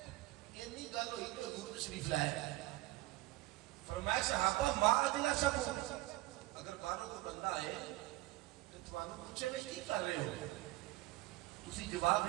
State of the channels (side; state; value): left; quieter; 18.7 dB